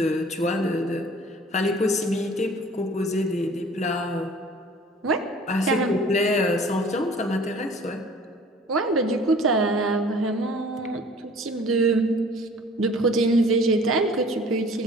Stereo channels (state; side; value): normal; both; correlation 0.49